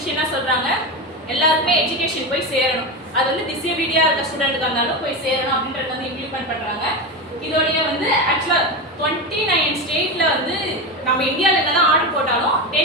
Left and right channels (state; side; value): normal; both; correlation 0.18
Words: என்ன சொல்கிறாங்க, எல்லாருக்குமே எஜுகேஷன் போய் சேரணும், அது வந்து டிசேபிலிட்டியாக இருக்க ஸ்டூடெண்ட்டுக்கு இருந்தாலும் போய் சேரணும் அப்படின்றது வந்து இம்ப்ளிமெண்ட் பண்ணுறாங்க. இதோடைய வந்து ஆக்சுவலாக 29 ஸ்டேட்டில் வந்து நம்ம இந்தியாவில் என்னதான் ஆர்டர் போட்டாலும்